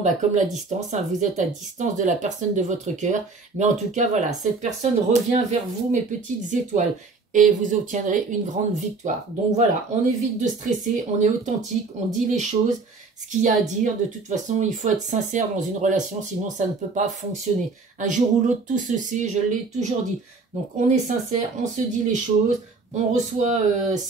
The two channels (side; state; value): left; quieter; 4.0 dB